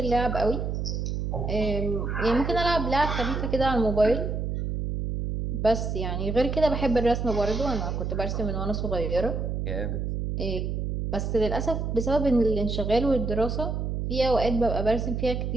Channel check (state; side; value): noise; right; hum, 2 dB below the sound